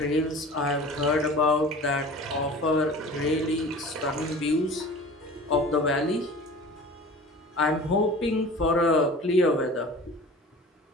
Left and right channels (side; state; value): both; normal; correlation 0.40